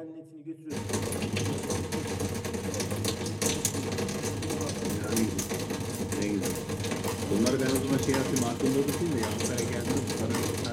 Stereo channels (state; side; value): identical; both; correlation 1.00